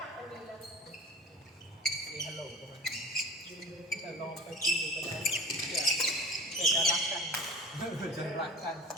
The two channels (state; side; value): normal; both; correlation 0.37